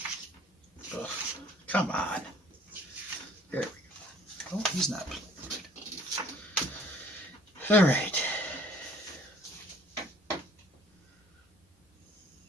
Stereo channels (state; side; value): normal; both; correlation 0.55